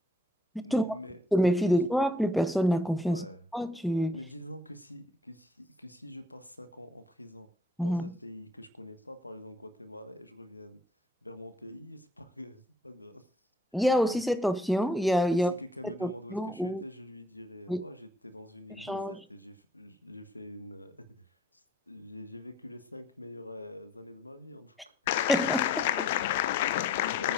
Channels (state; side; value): normal; both; correlation 0.64